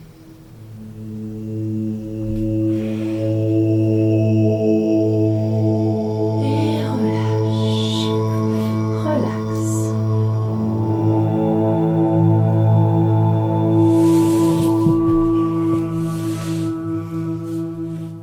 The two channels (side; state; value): both; identical; correlation 1.00